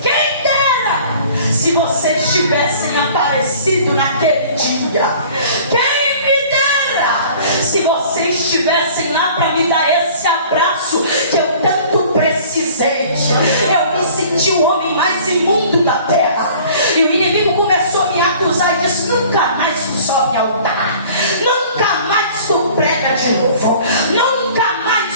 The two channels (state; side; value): inverted; both; correlation -0.49